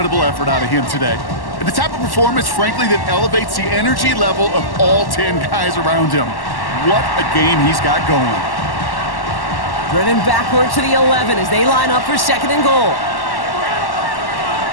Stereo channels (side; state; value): right; late; 1.1 ms